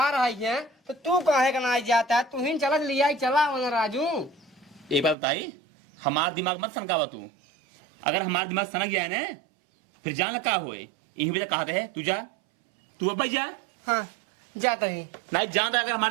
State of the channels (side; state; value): left; drops out; at 5.2 s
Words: आई है तो तू काहे का ना जाता है, तू ही चला लिया चला राजू। एक बात बताई, हमारा दिमाग मत सनकावा तू, अगर हमारा दिमाग सनक गया है ना फिर जान का होए, यही वजह कहते है तू जा, तू अब जा। हाँ जाता ही नहीं जानता, अगर हमारा